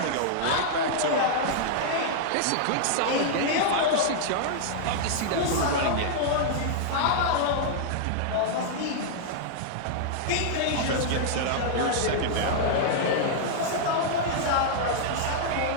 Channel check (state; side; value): different; both; correlation -0.01